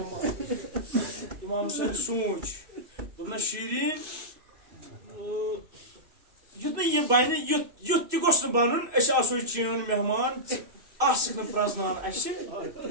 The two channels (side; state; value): left; late; 2.5 ms